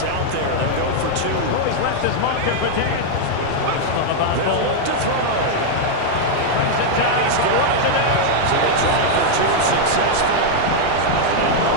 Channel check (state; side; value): different; both; correlation 0.00